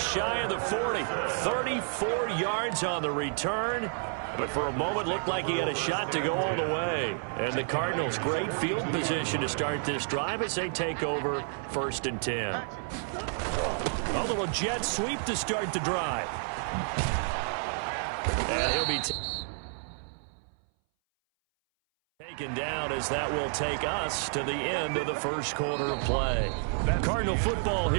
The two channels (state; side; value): silent; left; 58 dB below the other